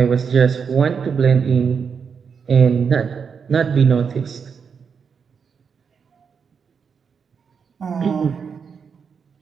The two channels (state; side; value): quieter; left; 6.3 dB